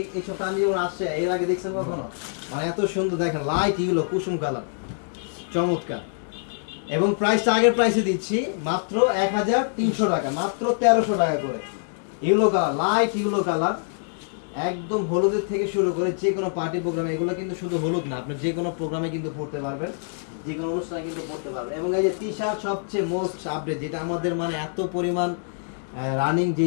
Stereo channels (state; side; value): silent; right; 62 dB below the other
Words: এইসব কাঞ্জিবরম আসছে, এর আগে দেখছেন কখনো? মানে এত সুন্দর দেখেন, লাইট ইউলো কুসুম কালার, চমৎকার। এবং প্রাইসটা আগের প্রাইসে দিচ্ছি মাত্র 1300 টাকা, মাত্র 1300 টাকা করে। Yellow colour, light yellow colour, একদম হলুদের থেকে শুরু করে যে কোনো পার্টি প্রোগ্রামে, এগুলো কিন্তু শুধু হলুদ না, আপনি যে কোনো প্রোগ্রামে কিন্তু পড়তে পারবেন, যে কোনো অনুষ্ঠানে কিন্তু পড়তে পারবেন। এবং এই যে টি শার্ট সবচেয়ে মোস্ট আপডেট, যেটা আমাদের মানে এত পরিমাণ রানিং